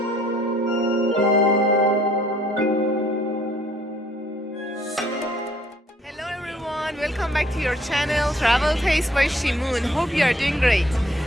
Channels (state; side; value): normal; both; correlation 0.61